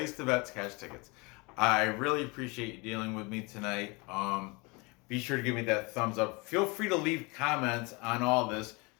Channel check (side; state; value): right; quieter; 27.6 dB